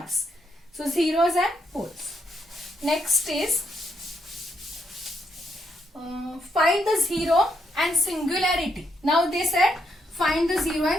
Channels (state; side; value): normal; both; correlation 0.77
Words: So zeros and poles. Next is find the zero and singularity. Now they said find the zero